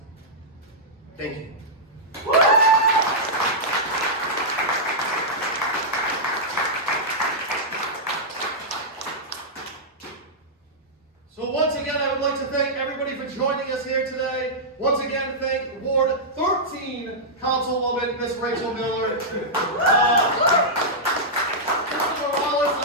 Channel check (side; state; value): both; normal; correlation -0.10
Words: Thank you. So once again, I would like to thank everybody for joining us here today. Once again, thank Ward 13 Councilwoman, Miss Rachel Miller. Mr. Morales,